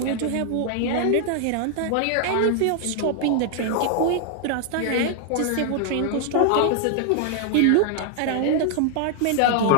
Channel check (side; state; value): both; different; correlation 0.00